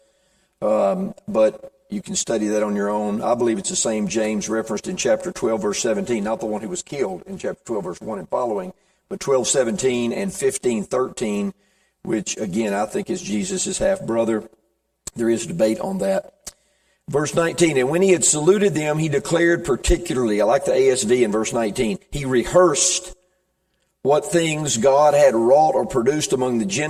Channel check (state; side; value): identical; both; correlation 1.00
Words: but you can study that on your own. I believe it's the same James referenced in chapter 12, verse 17, not the one who was killed in chapter 12, verse 1 and following, but 12:17 and 15:13, which, again, I think is Jesus' half-brother. There is debate on that. Verse 19, and when he had saluted them, he declared particularly, I like the ASV in verse 19, he rehearsed what things God had wrought or produced among the